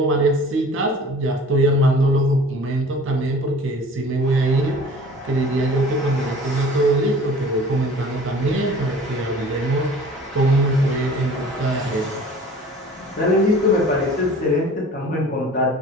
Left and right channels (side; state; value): both; normal; correlation 0.45